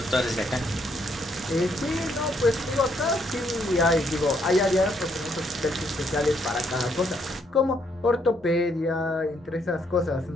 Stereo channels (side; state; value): both; normal; correlation 0.72